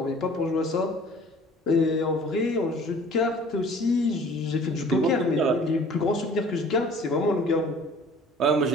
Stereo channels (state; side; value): normal; both; correlation 0.49